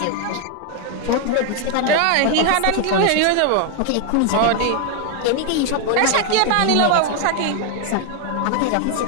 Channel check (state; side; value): different; both; correlation 0.00